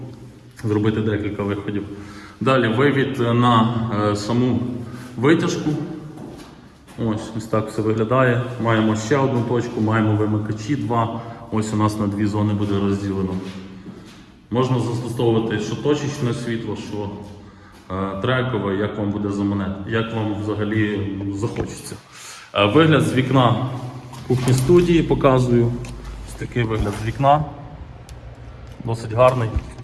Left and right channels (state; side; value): identical; both; correlation 1.00